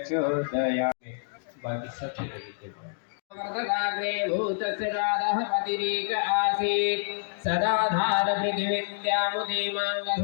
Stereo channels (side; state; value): right; silent; digital silence